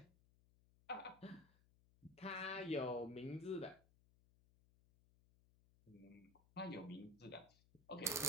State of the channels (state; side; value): noise; left; hum, 28 dB below the sound